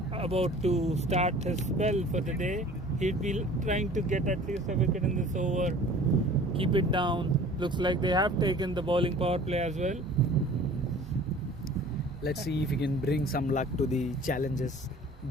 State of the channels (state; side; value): normal; both; correlation 0.47